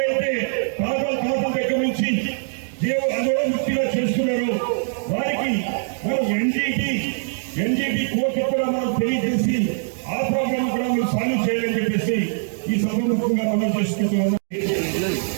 తాతల దగ్గర నుంచి అదోముక్తిగా చేస్తున్నారో వారికి మనం ఎన్జీటీ కోర్టు కూడా మనం తెలియజేసి ఆ ప్రోగ్రామ్ కూడా మనం సాల్వ్ చేయాలని చెప్పేసి ఈ సభముఖంగా మనం చేసుకుంటున్నాం.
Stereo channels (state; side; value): silent; left; digital silence